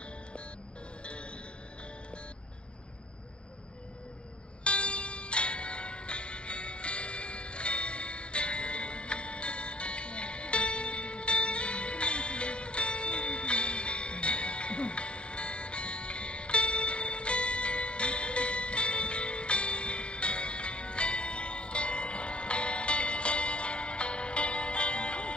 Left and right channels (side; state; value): right; late; 0.056 ms